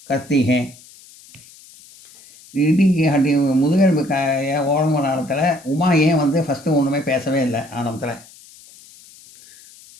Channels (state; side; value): noise; left; hiss, 23 dB below the sound